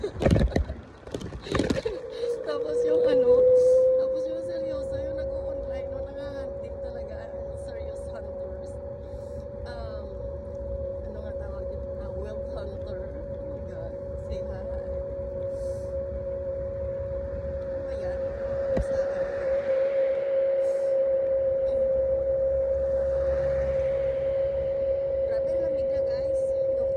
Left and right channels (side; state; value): both; identical; correlation 1.00